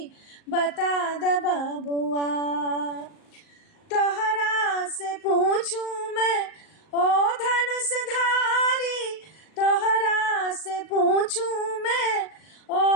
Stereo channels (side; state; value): right; late; 38 ms